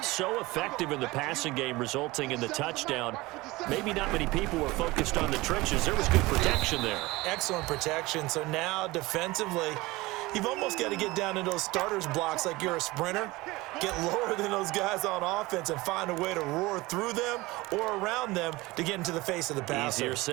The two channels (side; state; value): left; quieter; 20.9 dB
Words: so effective in the passing game, resulting in the touchdown. Maybe not many people were focused on the trenches. There was good protection there. Excellent protection. So now defensively, you've almost got to get down in those starters blocks like you're a sprinter. Get lower than those guys on offense and find a way to roar through them or around them to get into the face of the passer. Easier